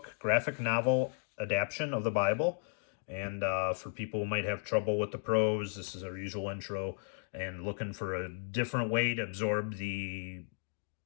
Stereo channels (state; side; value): silent; right; digital silence